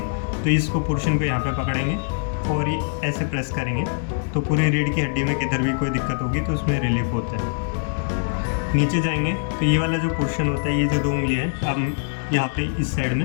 तो इसको पोर्शन को यहाँ पे पकड़ेंगे और ये ऐसे प्रेस करेंगे तो पूरी रीढ़ की हड्डी में किधर भी कोई दिक्कत होगी तो उसमें रिलीफ होता है। नीचे जाएंगे तो ये वाला जो पोर्शन होता है, ये जो 2 उंगलियाँ हैं, अब यहाँ पे इस साइड में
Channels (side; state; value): right; silent; 63 dB below the other